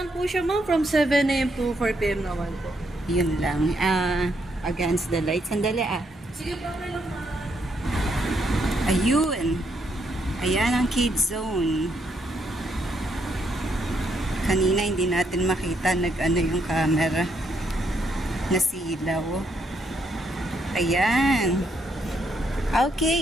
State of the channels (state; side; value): normal; both; correlation 0.75